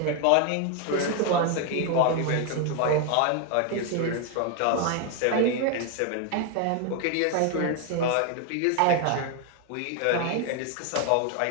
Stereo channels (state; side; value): different; both; correlation 0.01